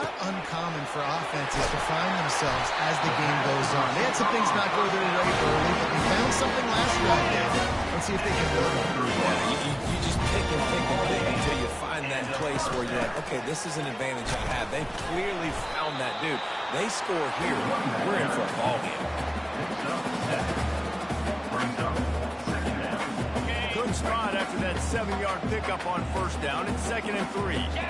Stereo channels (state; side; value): identical; both; correlation 1.00